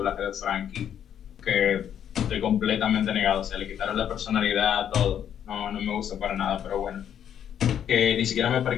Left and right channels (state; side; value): quieter; right; 9.4 dB